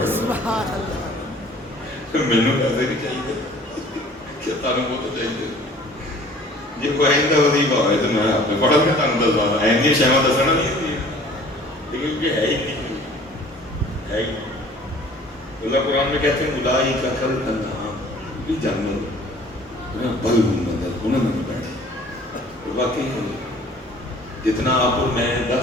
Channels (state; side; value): normal; both; correlation 0.50